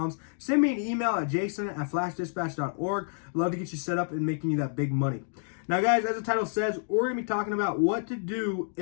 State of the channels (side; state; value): right; silent; digital silence